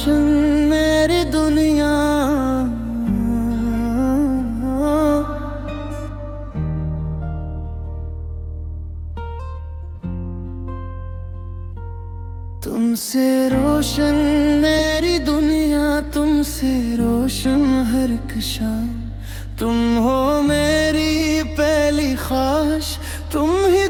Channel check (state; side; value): identical; both; correlation 1.00